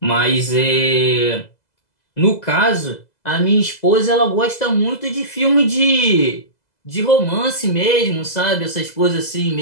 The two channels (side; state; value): right; late; 2.0 ms